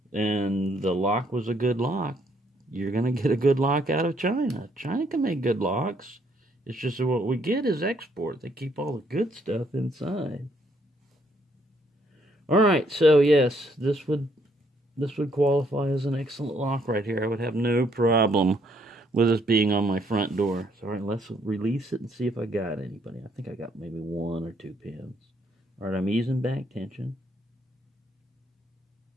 and the lock was a good lock, you're going to get a good lock out of China. China can make good locks. It's just that what we get is export. They keep all the good stuff inside. Alright, so yes, this would qualify as an excellent lock right here. I would have no problem with this being on my front door. So alright, let's release it and see if I got anybody. I think I got maybe 1 or 2 pins. Alright, I'm easing back tension.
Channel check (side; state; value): both; normal; correlation 0.70